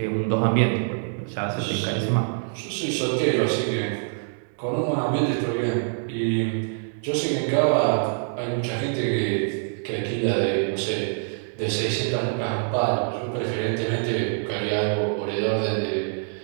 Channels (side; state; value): left; silent; 62 dB below the other